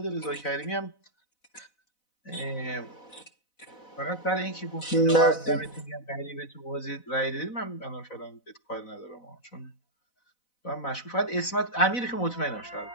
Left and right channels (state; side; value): late; right; 4.0 ms